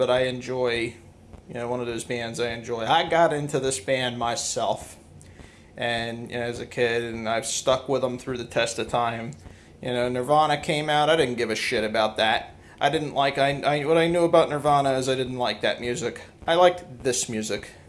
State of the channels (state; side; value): identical; both; correlation 1.00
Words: I enjoy, you know, one of those bands I enjoy. I got into this band myself, and, you know, as a kid, and I've stuck with them through the test of time. You know, Nirvana came out, I didn't give a shit about that. I didn't like, what I knew about Nirvana is I didn't like that music. I liked this music